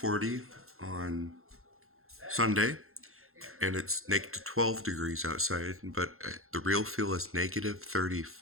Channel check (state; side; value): late; left; 0.62 ms